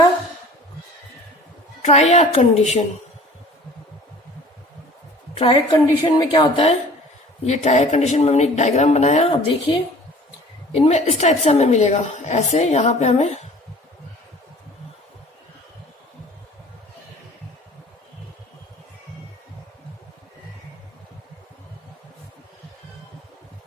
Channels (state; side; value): normal; both; correlation 0.47